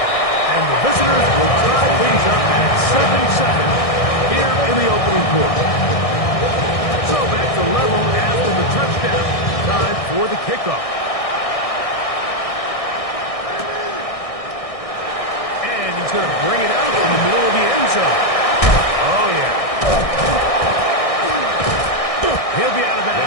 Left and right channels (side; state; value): right; late; 1.6 ms